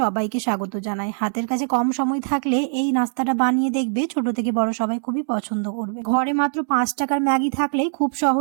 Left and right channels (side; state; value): left; silent; digital silence